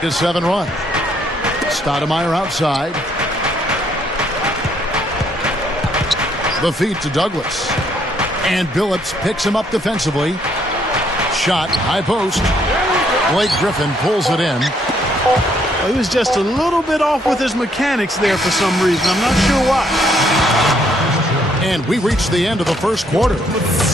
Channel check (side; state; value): both; normal; correlation 0.69